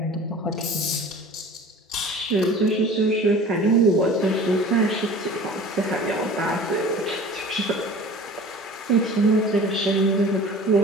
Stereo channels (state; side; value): normal; both; correlation 0.42